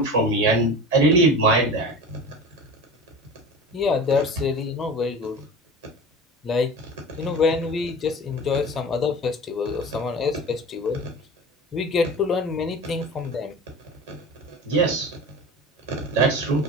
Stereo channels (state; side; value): normal; both; correlation 0.34